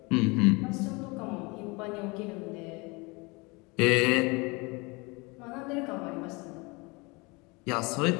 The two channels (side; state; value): right; quieter; 26.9 dB